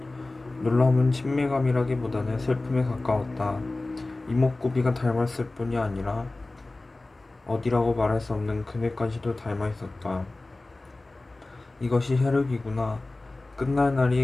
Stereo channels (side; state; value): right; quieter; 3.0 dB